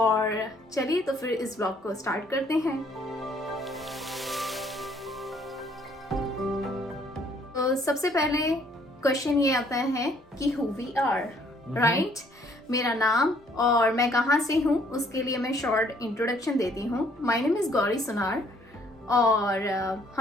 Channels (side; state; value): both; normal; correlation 0.64